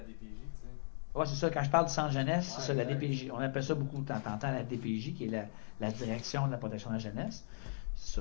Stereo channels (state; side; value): silent; right; digital silence